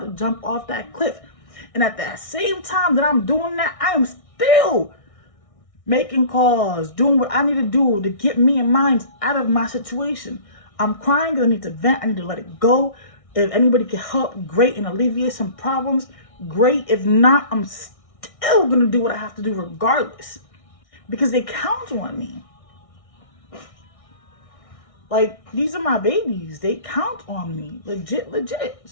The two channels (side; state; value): right; late; 1.6 ms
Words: to jump off that cliff. And at that same time that I'm doing that, I am still making calls, doing what I need to do to get me and mine out of my situation. I'm crying because I need to vent. I need to let it go. If anybody can help, great, and alleviate some problems, great. If not, I'm still going to do what I have to do regardless. Because they count on me. Like, these are my babies. They count on me. Legit.